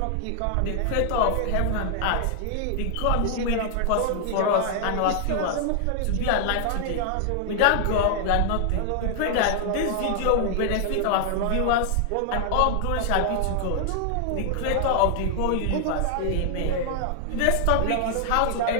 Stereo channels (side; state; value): both; different; correlation 0.00